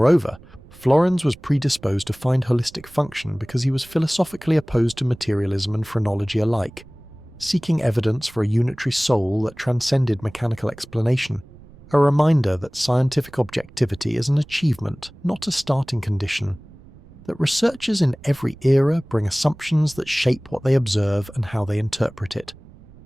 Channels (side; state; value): right; noise; rumble, 22 dB below the sound